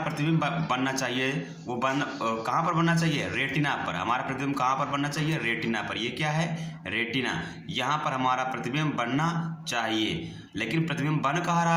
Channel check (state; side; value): identical; both; correlation 1.00